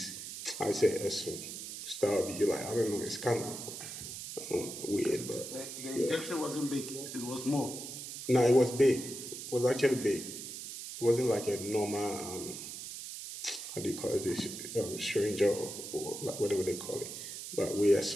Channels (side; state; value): right; noise; hiss, 9 dB below the sound